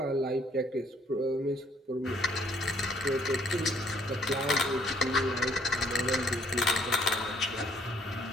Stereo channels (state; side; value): normal; both; correlation 0.64